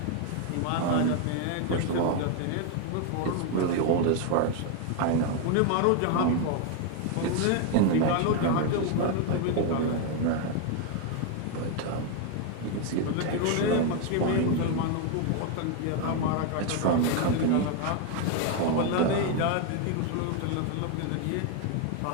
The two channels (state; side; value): different; both; correlation 0.01